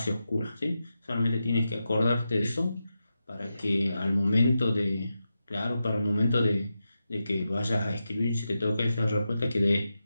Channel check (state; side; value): inverted; both; correlation -0.89